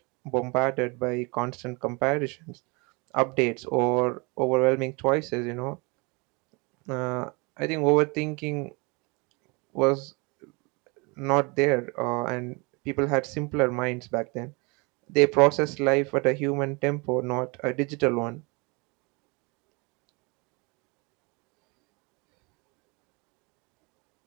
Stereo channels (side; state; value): left; quieter; 28.9 dB